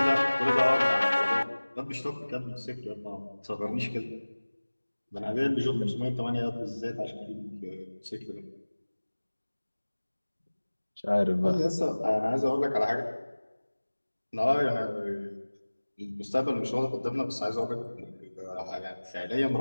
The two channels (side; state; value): both; inverted; correlation -1.00